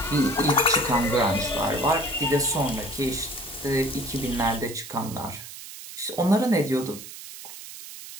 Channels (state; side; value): noise; right; hiss, 13 dB below the sound